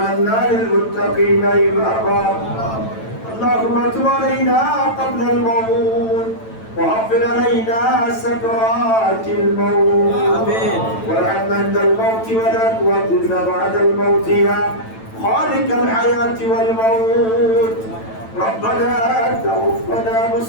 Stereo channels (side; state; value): right; late; 9.0 ms